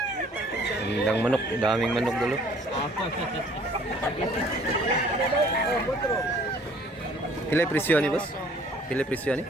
Gandang manok, daming manok dulu. Pila presyo ni boss? Pila presyo ni?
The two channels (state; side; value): normal; both; correlation 0.56